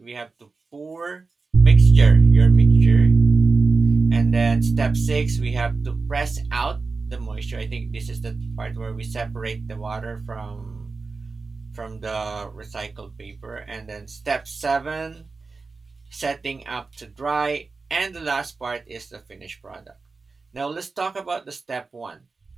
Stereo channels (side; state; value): left; quieter; 4.1 dB